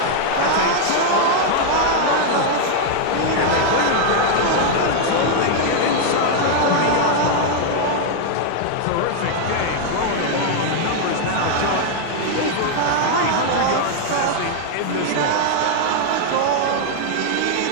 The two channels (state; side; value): different; both; correlation 0.00